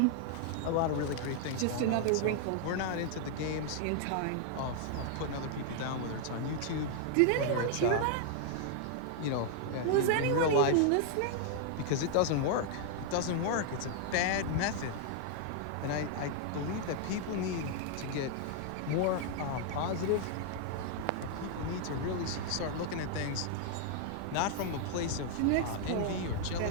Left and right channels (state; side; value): different; both; correlation 0.00